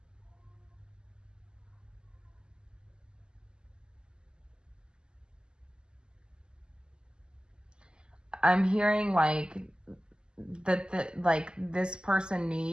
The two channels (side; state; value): left; late; 0.047 ms